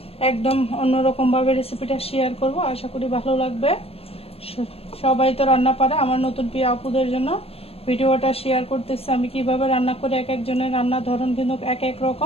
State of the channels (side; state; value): right; late; 0.28 ms